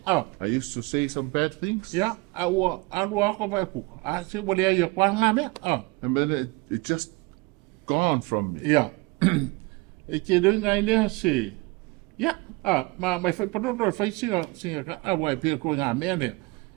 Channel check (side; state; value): left; quieter; 25.2 dB